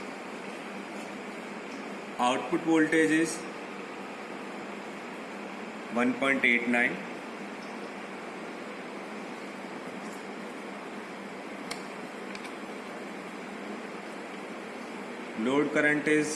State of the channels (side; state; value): both; identical; correlation 1.00